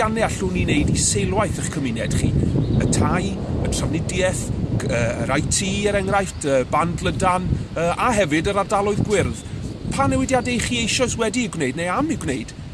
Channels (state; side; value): identical; both; correlation 1.00